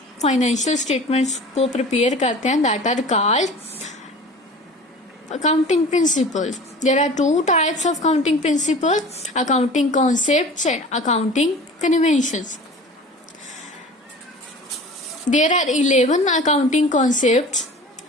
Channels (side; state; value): both; normal; correlation 0.41